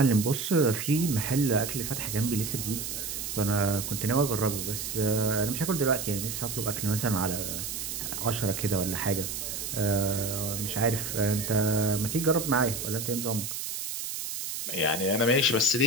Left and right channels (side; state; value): right; noise; hiss, 5 dB below the sound